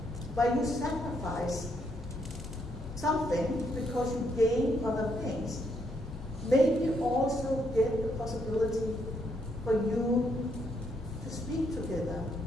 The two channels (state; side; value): normal; both; correlation 0.75